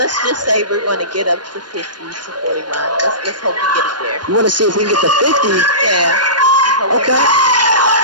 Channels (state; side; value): late; left; 0.70 ms